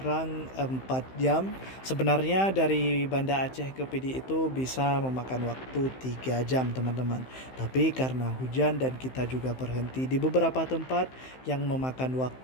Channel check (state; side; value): late; right; 15 ms